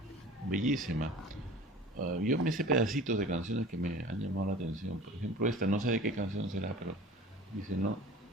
bellísima. Yo me sé pedacitos de canciones que me han llamado la atención. Por ejemplo, esta, no sé de qué canción será, pero dice, ¿no?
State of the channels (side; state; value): both; normal; correlation 0.41